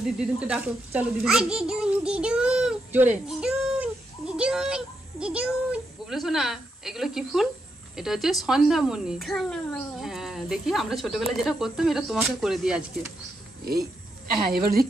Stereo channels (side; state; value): both; normal; correlation 0.82